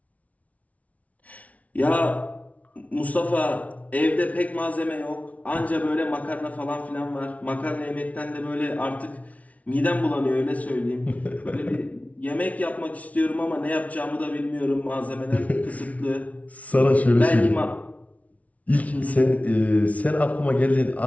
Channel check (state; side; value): late; right; 0.068 ms